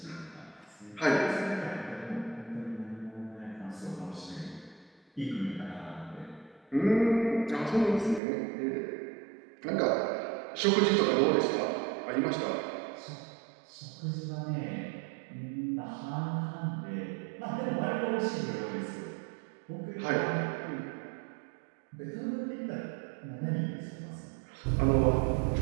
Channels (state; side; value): drops out; left; at 8.2 s